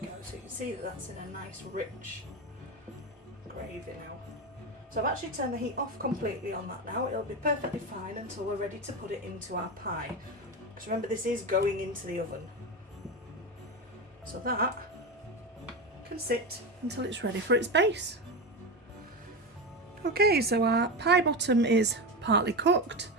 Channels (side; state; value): both; normal; correlation 0.19